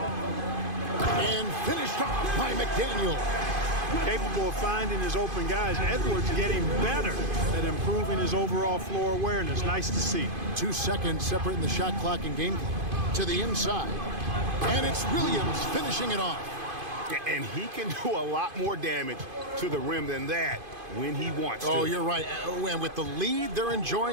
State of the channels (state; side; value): late; left; 2.5 ms